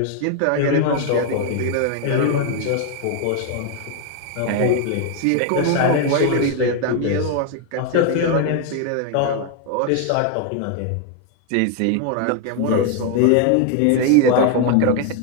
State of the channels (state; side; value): different; both; correlation 0.01